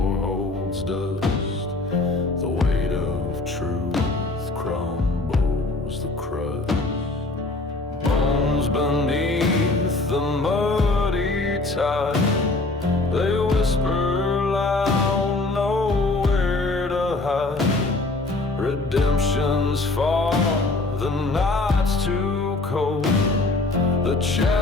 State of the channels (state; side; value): quieter; right; 3.2 dB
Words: holds dust. The weight of truth crumbles the crust. Bones beneath the muddy tide, they whisper loud, nowhere to hide. Redemption's far, the night's too cold. The